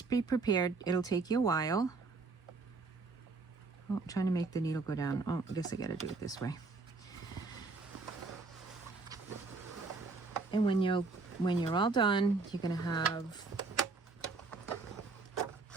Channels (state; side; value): quieter; left; 4.0 dB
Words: be prepared. It'll take you a while. Oh, I'm trying to make the needle go down. Oh, I guess I gotta do it this way. And when you're all done, you're gonna have,